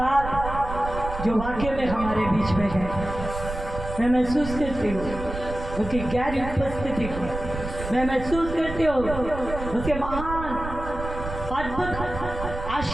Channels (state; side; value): noise; right; rumble, 8 dB below the sound